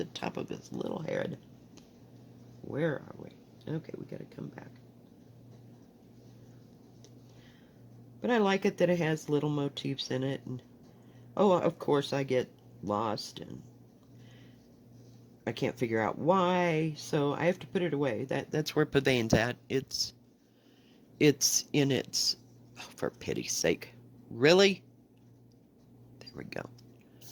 top of his little head. Where are we? Okay, we gotta come back. But I like it that it has little motifs in it, and oh, of course I get lost and I can't figure out why, so I have to put it away. That's where Pavane's at. It's in its... Oh, for pity's sake. Really? There we go.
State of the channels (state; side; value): identical; both; correlation 1.00